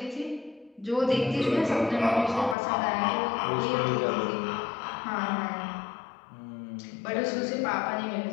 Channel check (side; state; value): right; drops out; at 2.6 s